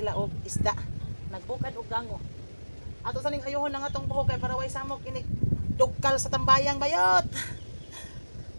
og isda. Nagbukad og gango. Ato sa ning ayohon nga atong buhok kay para way samok ini dugkal sa tambayang bayot.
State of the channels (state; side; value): inverted; both; correlation -1.00